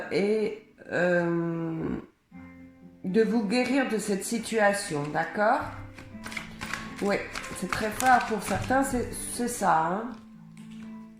et de vous guérir de cette situation, d'accord? Oui, c'est très fort pour certains, c'est ça. Hein?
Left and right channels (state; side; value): identical; both; correlation 1.00